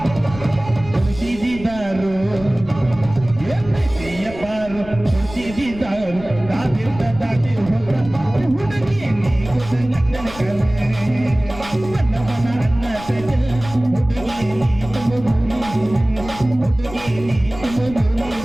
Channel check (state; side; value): noise; left; rumble, 15 dB below the sound